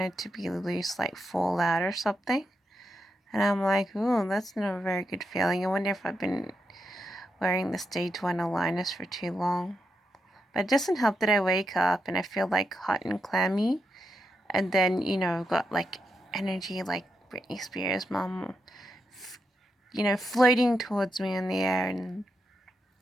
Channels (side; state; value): both; normal; correlation 0.84